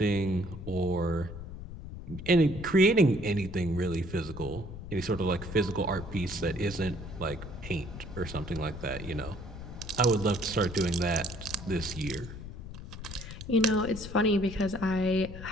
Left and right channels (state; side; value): noise; left; rumble, 11 dB below the sound